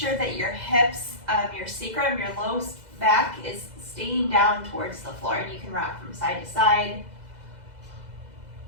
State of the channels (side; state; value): left; late; 2.0 ms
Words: that your hips, your sacrum, your low back is staying down towards the floor, and you can rock from side to side.